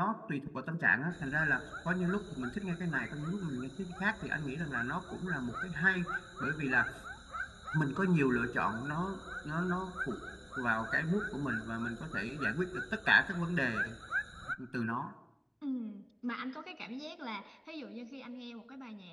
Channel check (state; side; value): identical; both; correlation 1.00